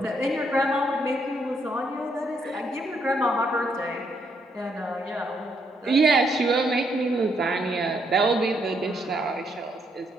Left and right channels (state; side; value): normal; both; correlation 0.74